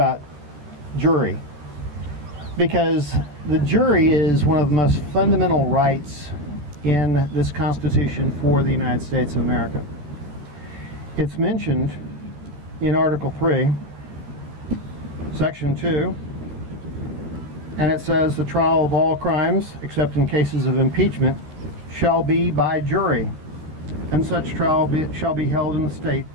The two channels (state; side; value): late; left; 13 ms